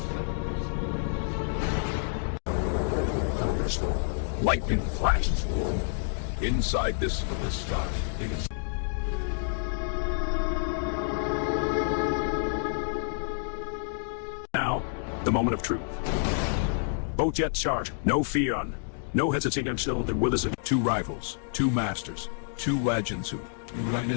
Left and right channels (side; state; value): right; silent; digital silence